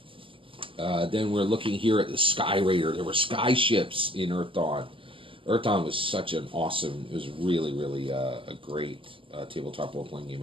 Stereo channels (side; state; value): left; late; 0.25 ms